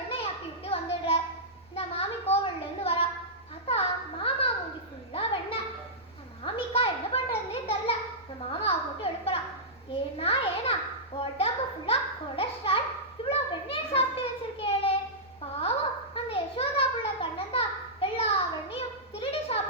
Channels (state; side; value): noise; left; rumble, 28 dB below the sound